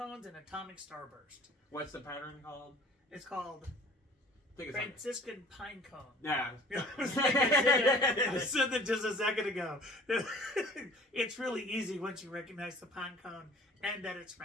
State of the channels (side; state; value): both; normal; correlation 0.49